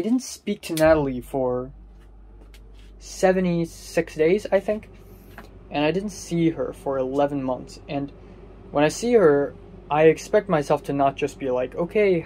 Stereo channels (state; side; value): identical; both; correlation 1.00